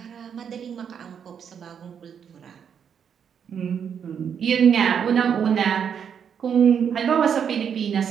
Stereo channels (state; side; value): quieter; left; 7.7 dB